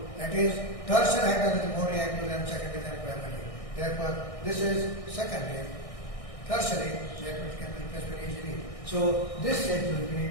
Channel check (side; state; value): right; late; 1.6 ms